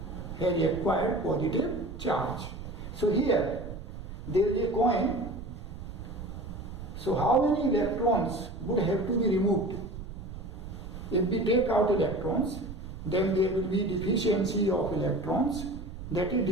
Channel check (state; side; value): noise; right; rumble, 11 dB below the sound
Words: has acquired positive charge. So here there is a coin. So how many electrons would have to be removed? If we take out electrons, then there will be deficiency of electrons, that is